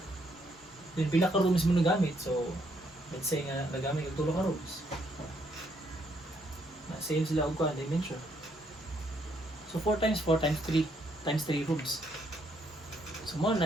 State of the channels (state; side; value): normal; both; correlation 0.72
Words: Then pila ka rooms mo nagamit. So let's say nga nagamit og 3 ka rooms. Na same sila og kuan dimension. So 4 times 4 times 3 times 3 rooms. So mo